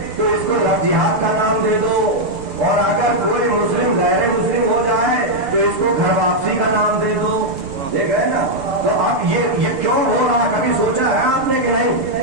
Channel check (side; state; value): left; late; 7.0 ms